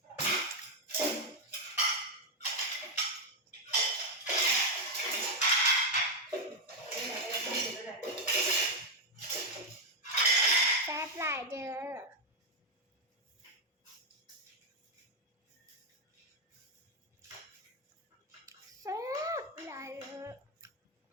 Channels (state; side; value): normal; both; correlation 0.03